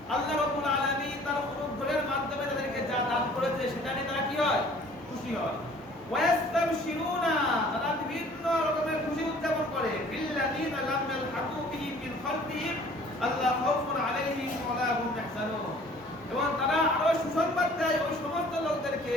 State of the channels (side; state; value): both; normal; correlation 0.52